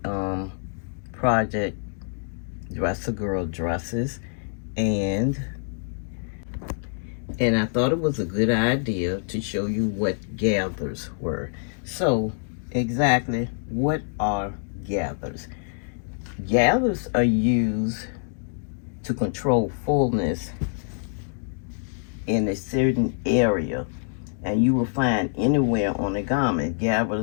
project Dress a Girl Dresses, and I thought it was a good idea to show you what gathers were. So exactly what are gathers? Gathers are used to control fullness in a certain area, and you will find anywhere on a garment.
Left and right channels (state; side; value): silent; right; digital silence